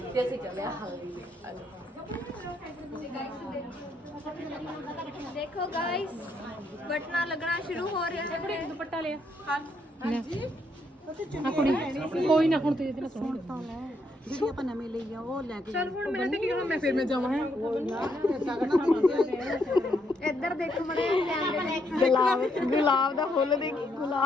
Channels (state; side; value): normal; both; correlation 0.75